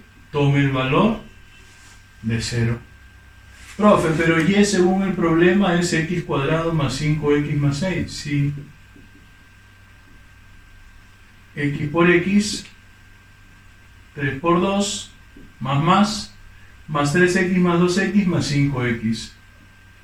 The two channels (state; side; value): identical; both; correlation 1.00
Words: tome el valor de 0. Profe, pero y según el problema es x cuadrado más 5x más 6. Sí. X por x, 3 por 2, más 3x más 2x más 5x.